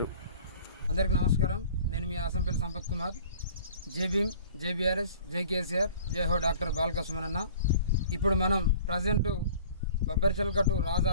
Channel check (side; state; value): both; inverted; correlation -0.47